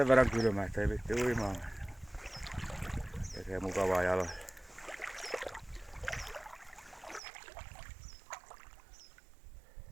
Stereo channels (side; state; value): left; drops out; at 7.2 s